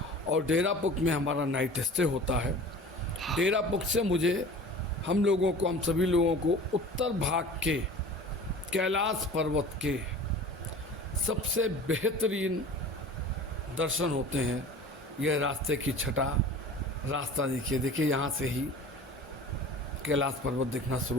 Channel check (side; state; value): both; normal; correlation 0.41